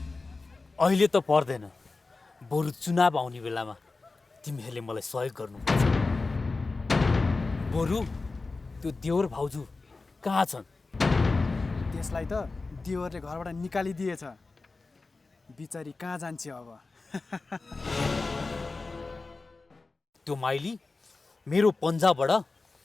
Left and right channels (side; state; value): right; quieter; 3.7 dB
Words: अहिले त पर्दैन, बरु चुनाव आउने बेलामा तिमीहरूले मलाई सहयोग गर्नुपर्छ। बरु त्यो देवर भाउजू कहाँ छन्? त्यसलाई त देवरले घरबाट निकालिदिएछ। बिचारी कहाँ जान्छ अब? त्यो माइली मेरो पन्जाबाट